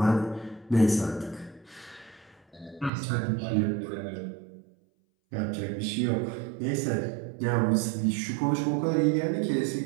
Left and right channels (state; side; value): drops out; left; at 2.9 s